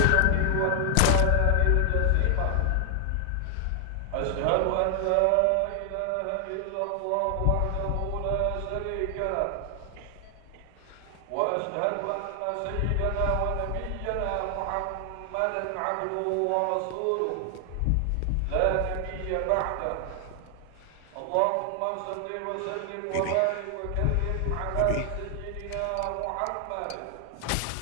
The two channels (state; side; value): different; both; correlation 0.00